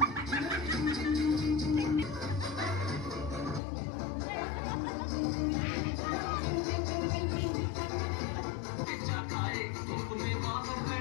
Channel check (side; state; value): right; drops out; at 3.6 s